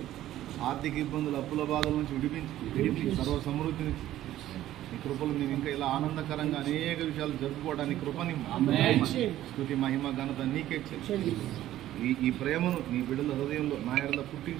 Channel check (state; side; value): quieter; left; 13.5 dB